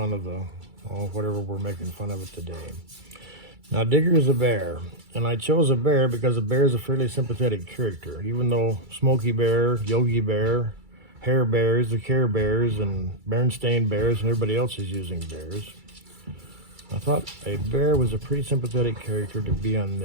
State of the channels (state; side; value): late; left; 2.3 ms